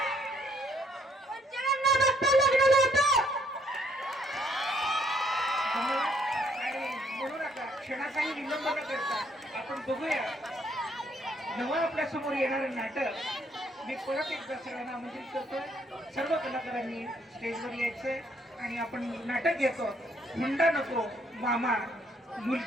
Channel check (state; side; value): normal; both; correlation 0.68